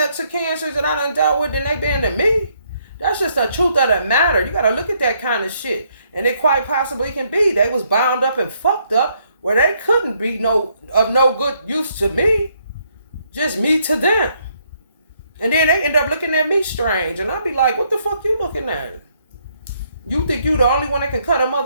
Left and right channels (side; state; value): both; inverted; correlation -0.71